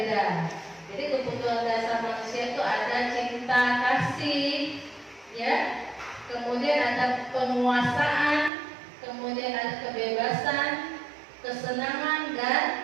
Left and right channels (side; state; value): left; drops out; at 8.5 s